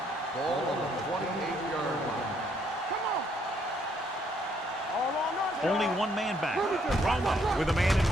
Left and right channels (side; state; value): both; normal; correlation 0.70